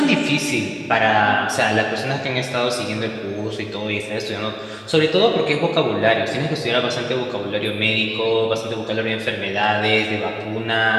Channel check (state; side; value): identical; both; correlation 1.00